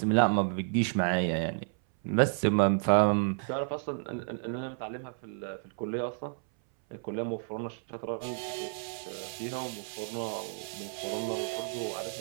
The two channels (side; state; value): left; silent; 57 dB below the other